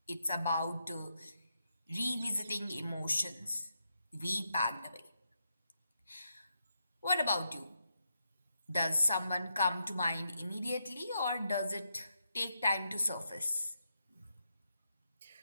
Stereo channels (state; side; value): inverted; both; correlation -0.83